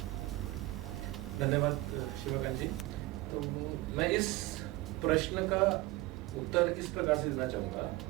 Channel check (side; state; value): left; quieter; 19.7 dB